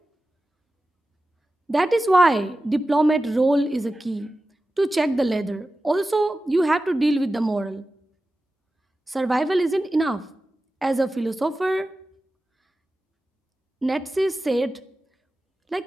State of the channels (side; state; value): both; normal; correlation 0.94